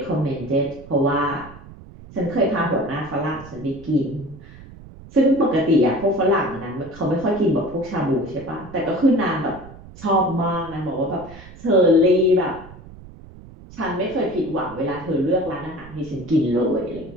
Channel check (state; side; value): noise; right; rumble, 18 dB below the sound